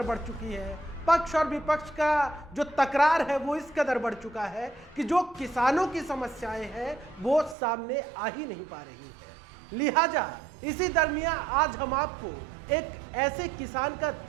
बढ़ चुकी है, पक्ष और विपक्ष का जो तकरार है वो इस कदर बढ़ चुका है कि जो किसानों की समस्याएं हैं वो सामने आ ही नहीं पा रही है। लिहाजा इसी दरमियान आज हम आपको एक ऐसे किसान का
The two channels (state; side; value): drops out; left; at 7.6 s